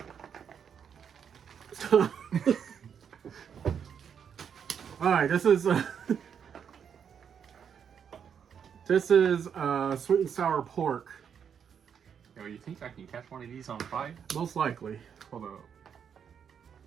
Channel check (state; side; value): quieter; left; 7.6 dB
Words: Alright, this is sweet and sour pork. Yo, you think I can catch one of these on fire? Most likely. Hold up.